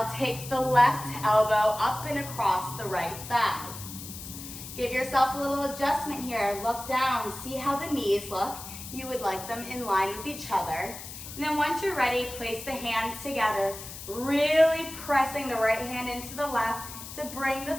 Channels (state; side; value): noise; left; hiss, 12 dB below the sound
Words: take the left elbow up and across the right thigh. Give yourself a little adjustment here. Look down. See how the knees look. You would like them in line with each other. And then once you're ready, place the hands together, really pressing the right hand into the left to bring the